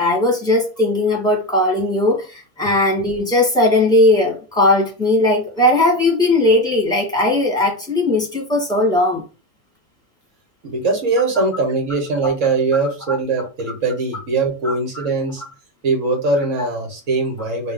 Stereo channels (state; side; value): normal; both; correlation 0.14